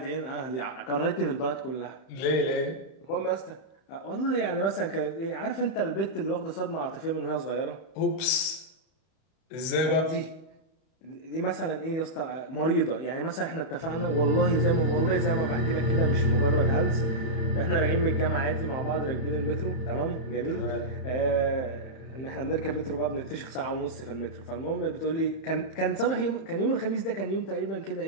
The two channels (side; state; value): right; late; 32 ms